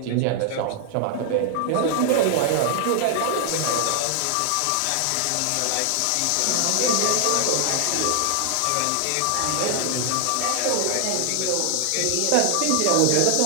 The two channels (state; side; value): different; both; correlation 0.00